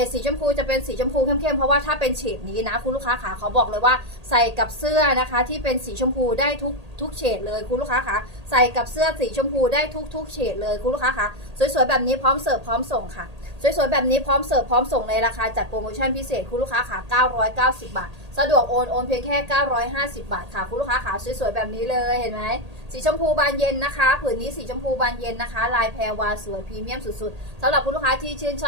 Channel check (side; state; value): left; late; 1.8 ms